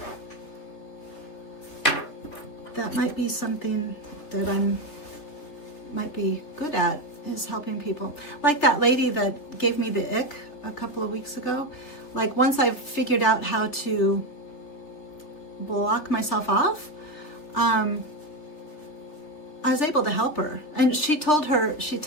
something that might be good at, is helping people. Like that lady that gave me the ick a couple of weeks ago. Like once I've figured out how to block myself off, I was able to help her. And this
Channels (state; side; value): late; right; 3.5 ms